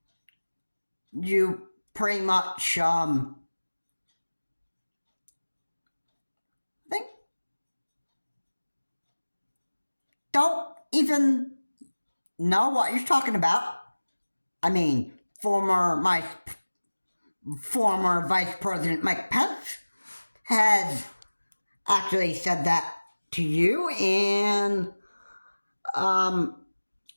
pretty much, think, don't even know what you're talking about. I mean, former Vice President Mike Pence has actually said that to you, and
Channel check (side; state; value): both; inverted; correlation -1.00